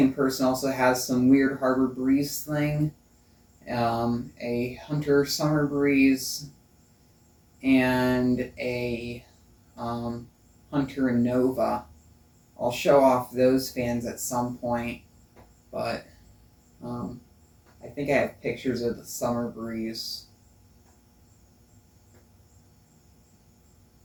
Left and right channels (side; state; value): both; identical; correlation 1.00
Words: person also has some weird Harbor Breeze thing, a Hunter Summer Breeze, and a Hunter Nova. I'll show off those fans at some point, but I think I have pictures of the Summer Breeze.